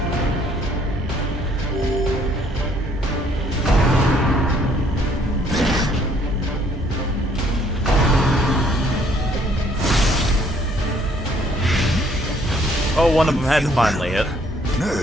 Oh, one of them had finally hit.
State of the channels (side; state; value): both; normal; correlation 0.63